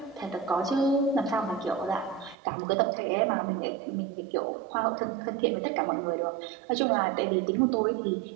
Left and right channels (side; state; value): left; drops out; at 2.4 s